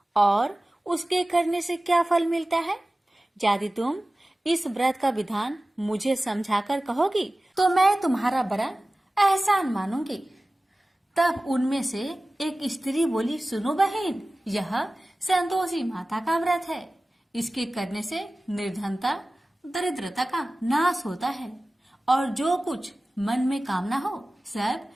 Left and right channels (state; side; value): normal; both; correlation 0.97